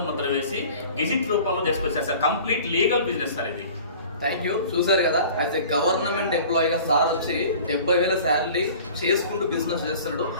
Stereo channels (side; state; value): both; inverted; correlation -0.44